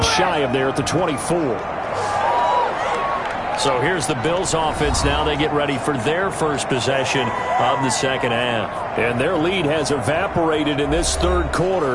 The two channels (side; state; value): both; identical; correlation 1.00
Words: shy of there at the 24. So here's the Bills offense now. They get ready for their first possession of the second half. And their lead has evaporated in this third